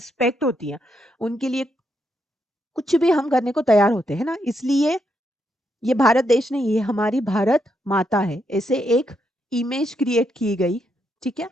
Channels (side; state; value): both; normal; correlation 0.79